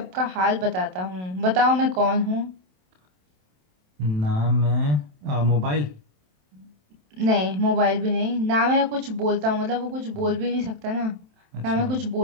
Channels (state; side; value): late; left; 27 ms